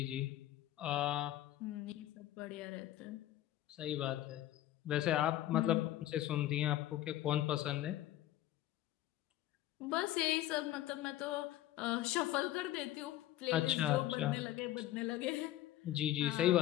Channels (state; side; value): quieter; right; 14.2 dB